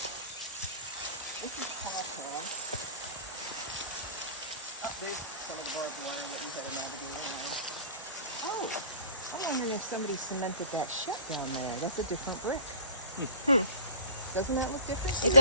This is Paul Pass. Oh, there's some of the barbed wire that we haven't navigated. Oh, I'm wondering if somebody cemented that shut down there. That's a different brick. Doesn't that look different? It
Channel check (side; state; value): both; inverted; correlation -0.42